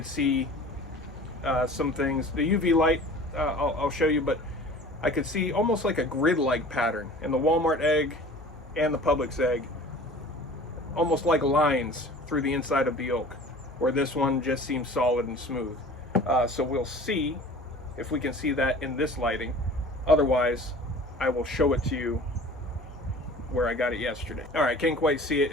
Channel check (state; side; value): normal; both; correlation 0.43